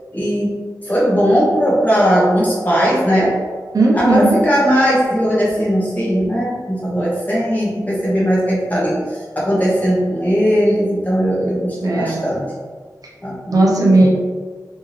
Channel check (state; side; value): normal; both; correlation 0.89